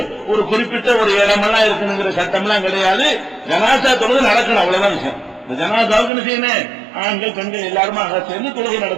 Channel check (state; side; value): drops out; left; at 6.1 s